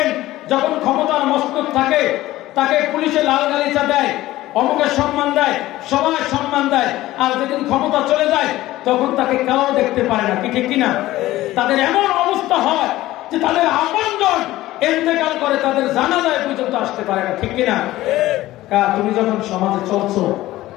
যখন ক্ষমতার মস্তক থাকে তাকে পুলিশে লাল গালিচা দেয়, অমুকের সম্মান দেয়, সবাই সম্মান দেয়, আর যেদিন ক্ষমতা চলে যায় তখন তাকে কেউ দেখতে পারে না, কি ঠিক কিনা? তাদের এমন অবস্থা হয় যে তাদের আপনজন ইন্তেকাল করে, তাদের জানাজায় পর্যন্ত আসতে পারে না, ঠিক কিনা? তুমি যখন সমাজে চলছো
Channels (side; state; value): right; quieter; 16.3 dB